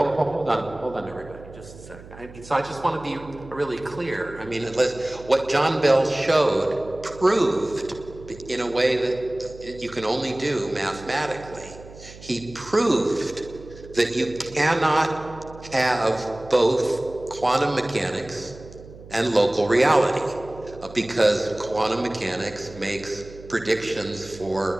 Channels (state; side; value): noise; right; hum, 18 dB below the sound